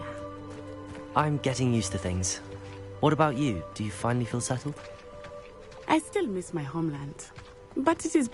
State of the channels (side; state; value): both; identical; correlation 1.00